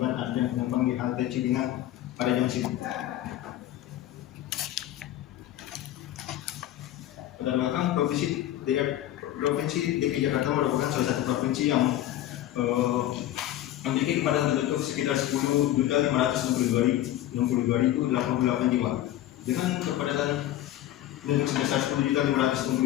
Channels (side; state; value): right; quieter; 13.4 dB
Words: adanya penumpang di halte Cipinang pada jam sibuk. Pada belakang, Provinsi DKI Jakarta merupakan salah satu provinsi yang memiliki kepadatan penduduk sekitar 10.562.088 jiwa. Dengan kepadatan penduduk sebesar